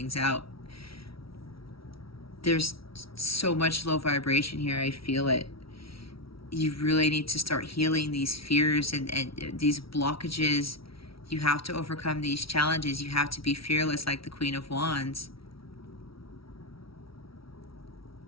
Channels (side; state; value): right; late; 0.75 ms